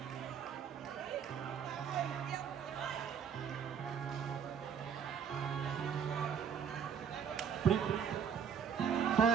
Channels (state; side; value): quieter; left; 7.7 dB